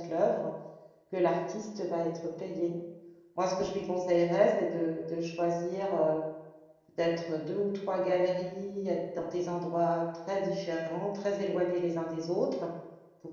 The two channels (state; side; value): identical; both; correlation 1.00